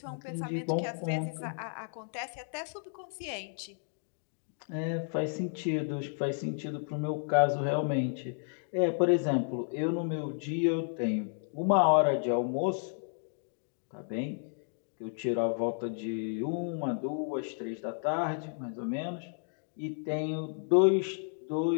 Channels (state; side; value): silent; right; digital silence